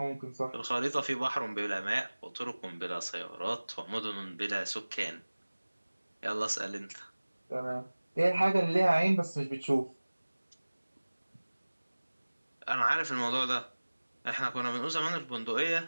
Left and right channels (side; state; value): both; inverted; correlation -1.00